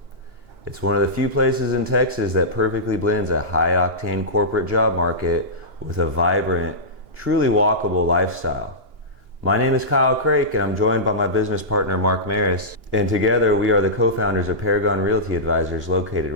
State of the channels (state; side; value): late; left; 2.9 ms